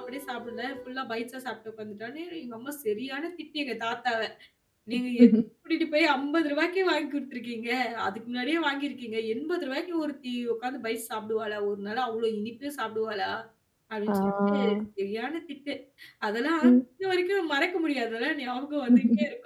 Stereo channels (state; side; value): identical; both; correlation 1.00